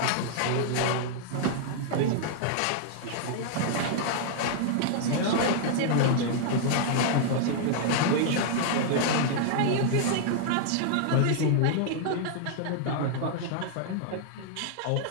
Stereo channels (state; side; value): different; both; correlation -0.01